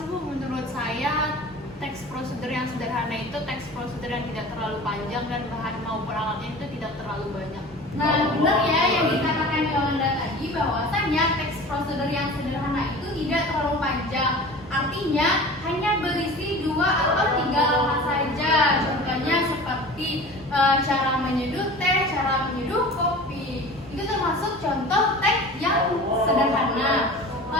Bu. Menurut saya teks prosedur yang yang sederhana itu teks prosedur yang tidak terlalu panjang dan bahan maupun alatnya itu tidak terlalu banyak. Nah, benar ya yang dikatakan Yolanda tadi bahwasanya teks prosedur yang sederhana itu tidak terlalu panjang. Artinya hanya berisi 2 atau 3 langkah saja. Contohnya seperti cara menyeduh teh, cara menyeduh kopi. Itu termasuk contoh teks yang sederhana.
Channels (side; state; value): both; normal; correlation 0.38